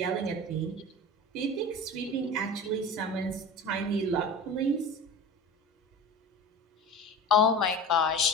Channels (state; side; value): normal; both; correlation 0.33